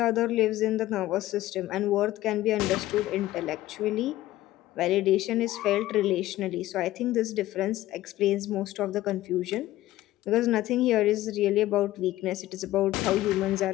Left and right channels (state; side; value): quieter; right; 15.6 dB